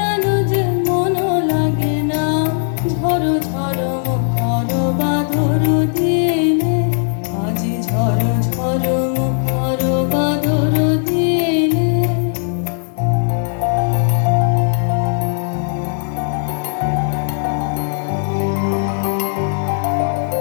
যে মন লাগে না। ঝড় ঝড় মুখর বাঁধর দিনে, আজি ঝড় ঝড় মুখর বাঁধর দিনে।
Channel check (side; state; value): right; silent; digital silence